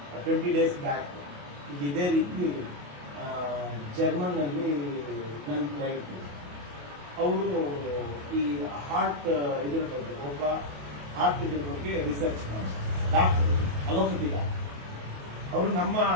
20 days ಬ್ಯಾಕ್ ಈಗ ಇದೇ ರೀತಿ ಜರ್ಮನ್ ನಲ್ಲಿ ನನ್ನ ಕ್ಲೈಂಟ್ ಅವರು ಈ ಹಾರ್ಟ್ ಇದ್ರ ಬಗ್ಗೆ ಒಬ್ಬ ಹಾರ್ಟ್ ಇದ್ರ ಬಗ್ಗೆ ರಿಸರ್ಚ್ ಮಾಡ್ತಾರೆ, ಡಾಕ್ಟರ್ ಅಲೋಪತಿ ಡಾಕ್ಟರ್. ಅವರು ನಮ್ಮ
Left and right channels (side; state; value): left; late; 28 ms